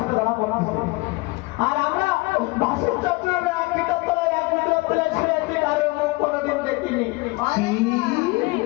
ধরা পড়া। আর আমরা ভাসুর চত্বরের এক ভিতর তলায় এক ভিতর তলায় ছেড়ে আছি, কারোর মুখ কোনোদিন দেখিনি।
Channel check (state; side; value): quieter; right; 24.8 dB